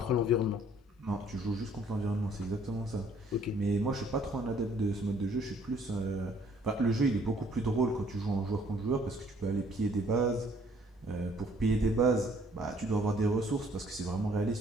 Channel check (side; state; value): both; normal; correlation 0.61